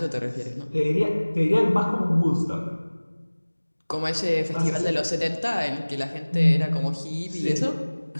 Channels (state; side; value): inverted; both; correlation -1.00